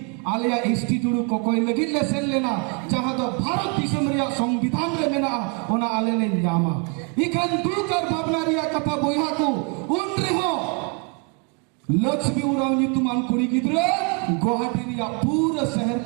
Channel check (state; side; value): quieter; left; 34.2 dB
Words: Alia institute কোকই লাগি লেসেল लेना जहां तो भारत दिसम रिया संविधान रे मेना ओना आले ले न्यामा इखन दुकर भावना रिया कथा बोया को उन रे हो लक्ष्मी उराव नितुमान कुड़ी गिद्रे गुवाहाटी रिया पूरा शहर